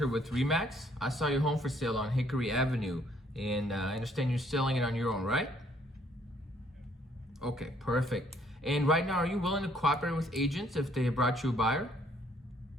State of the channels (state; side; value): normal; both; correlation 0.65